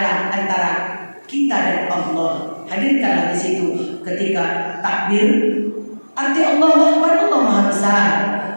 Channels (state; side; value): inverted; both; correlation -1.00